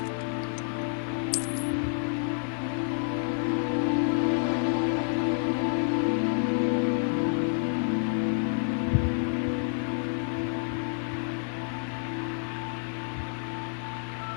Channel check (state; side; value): silent; right; 59 dB below the other